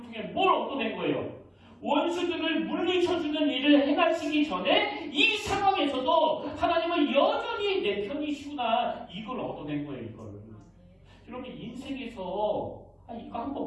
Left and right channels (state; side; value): identical; both; correlation 1.00